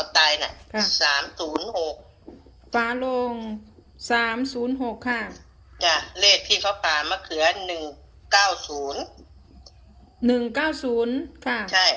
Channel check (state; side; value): identical; both; correlation 1.00